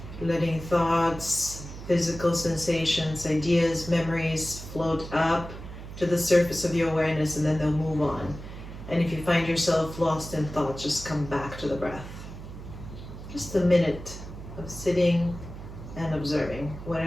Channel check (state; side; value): noise; right; hum, 12 dB below the sound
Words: letting thoughts, physical sensations, ideas, memories float up to the surface of your awareness, and then they'll move on. And if you find yourself lost in thought, just come back to the breath. Just a minute of sitting and observing